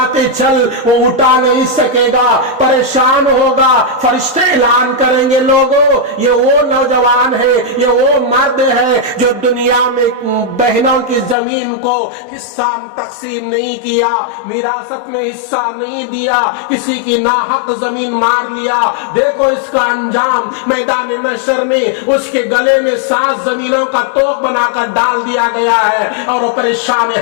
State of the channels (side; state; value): right; drops out; at 11.4 s